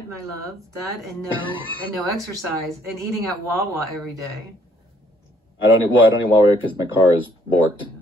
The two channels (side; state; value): both; normal; correlation 0.64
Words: my love. That and no exercise and eating at Wawa every day. I don't eat Wawa because my car is borked.